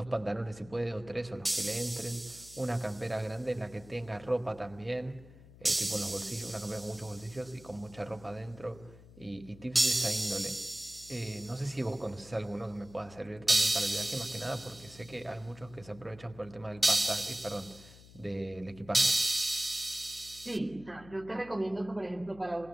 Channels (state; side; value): noise; left; hum, 20 dB below the sound